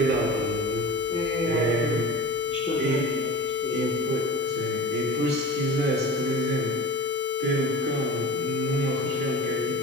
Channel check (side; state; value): both; normal; correlation 0.35